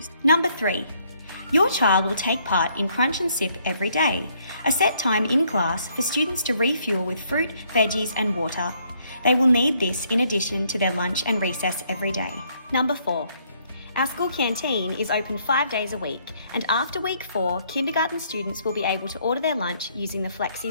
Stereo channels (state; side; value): inverted; both; correlation -0.68